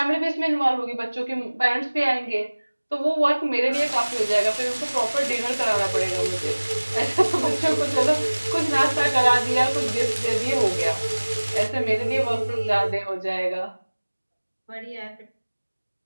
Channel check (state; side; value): inverted; both; correlation -1.00